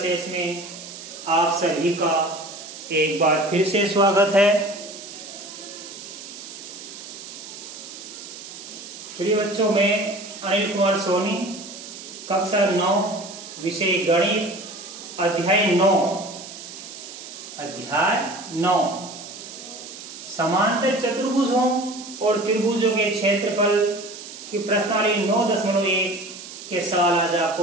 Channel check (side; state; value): right; noise; hiss, 13 dB below the sound